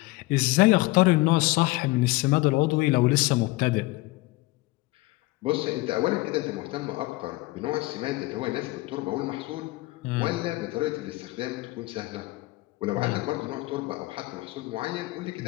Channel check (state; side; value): quieter; right; 21.0 dB